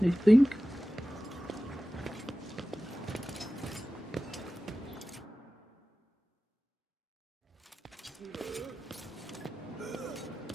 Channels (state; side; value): normal; both; correlation 0.96